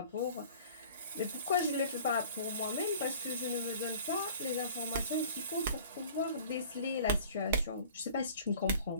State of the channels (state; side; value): inverted; both; correlation -0.46